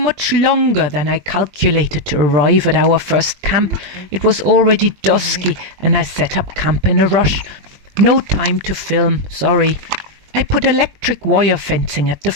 longer than I calculated to arrive at our first camp. It was already dusky and I set up camp in a rush. No time to film, sorry. I put electric wire fencing at the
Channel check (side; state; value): left; late; 20 ms